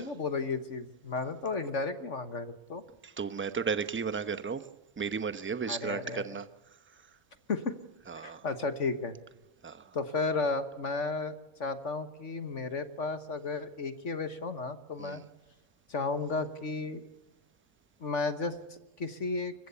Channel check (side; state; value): both; normal; correlation 0.04